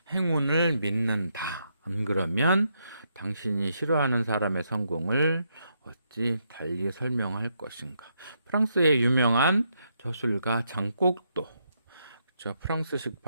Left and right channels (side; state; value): both; inverted; correlation -0.78